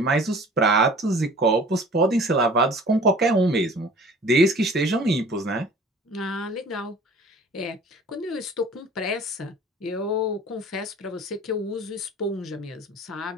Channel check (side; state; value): both; normal; correlation 0.47